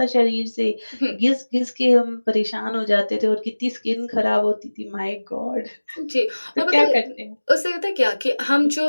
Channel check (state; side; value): inverted; both; correlation -1.00